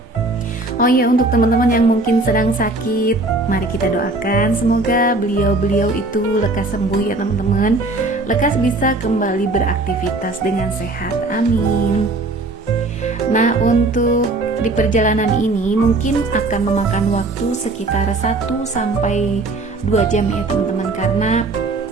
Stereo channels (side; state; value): left; quieter; 3.1 dB